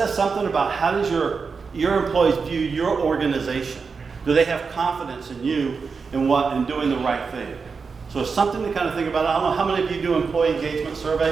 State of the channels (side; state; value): left; quieter; 5.1 dB